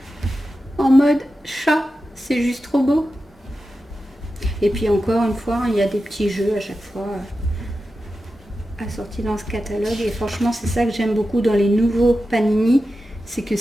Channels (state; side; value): normal; both; correlation 0.92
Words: en mode chat. C'est juste trop beau. Et puis encore une fois, il y a des petits jeux à chaque fois assortis dans ce catalogue. Et franchement, c'est ça que j'aime beaucoup dans les nouveaux Panini. C'est que